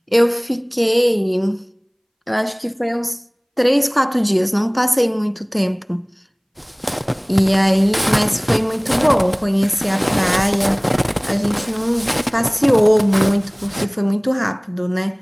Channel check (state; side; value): identical; both; correlation 1.00